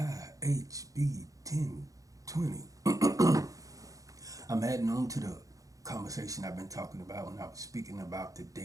1020. I'm adding on to the conversation I've been talking about when I was speaking about the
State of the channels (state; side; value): late; left; 0.17 ms